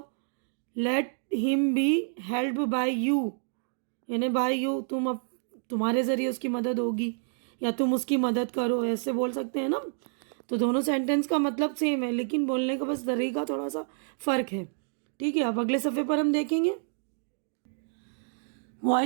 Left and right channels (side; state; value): left; silent; digital silence